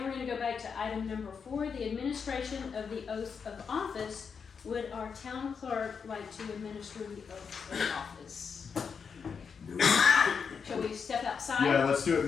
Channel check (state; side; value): quieter; right; 6.1 dB